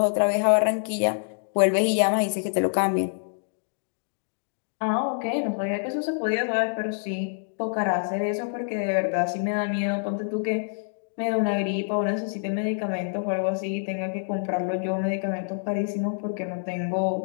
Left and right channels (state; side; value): silent; right; digital silence